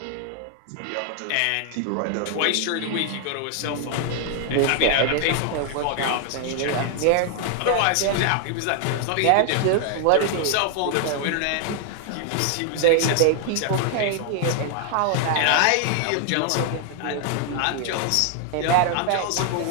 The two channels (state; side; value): different; both; correlation 0.00